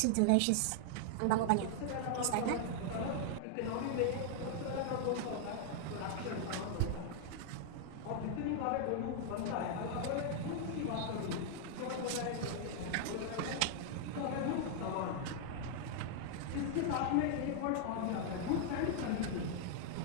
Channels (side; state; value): both; different; correlation 0.00